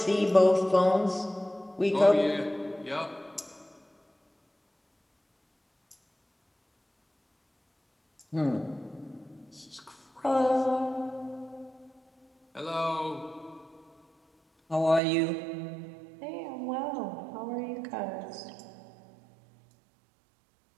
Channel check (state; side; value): drops out; left; at 15.0 s